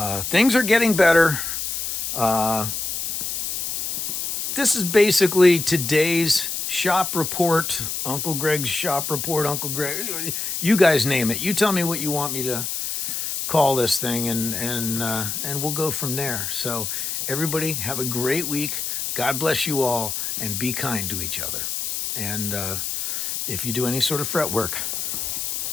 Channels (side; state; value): left; noise; hiss, 3 dB below the sound